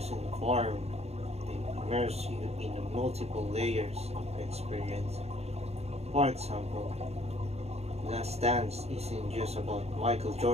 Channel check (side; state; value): left; late; 0.30 ms